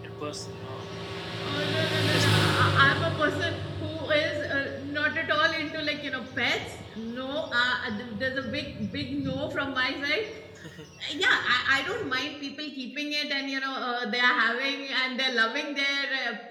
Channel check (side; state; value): both; identical; correlation 1.00